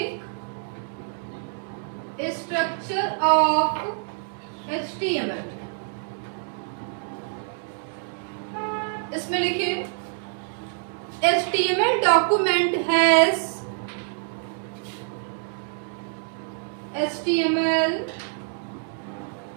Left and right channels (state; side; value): silent; left; digital silence